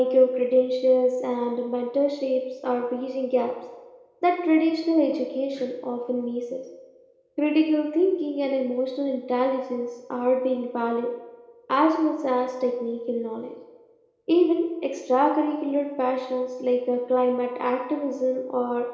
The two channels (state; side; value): identical; both; correlation 1.00